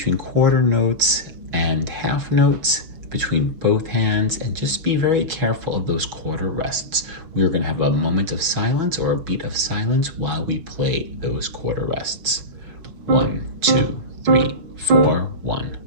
quarter notes and half notes between both hands, and just be very careful of those quarter rests. We are going to have a moment of silence or a beat of silence while we play those quarter rests. 1, 2, 3, 4, 1,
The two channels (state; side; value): late; left; 6.1 ms